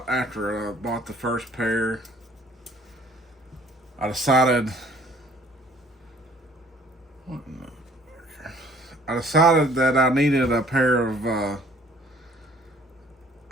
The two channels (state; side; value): normal; both; correlation 0.57